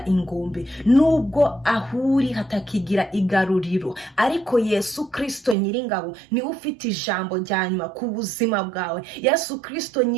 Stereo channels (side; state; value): left; drops out; at 5.6 s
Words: ingombe, nubwo ahuri hatakigira igaruriro, ariko Yesu Kristo Nyiringabo niwe ufite ijambo rya nyuma ku buzima bwawe. Yesu Kristo